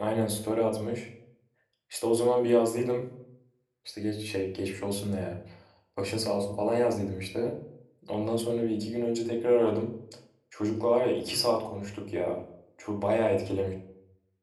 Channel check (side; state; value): both; identical; correlation 1.00